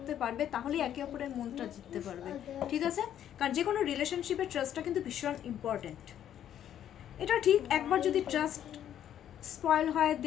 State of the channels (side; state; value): right; quieter; 10.5 dB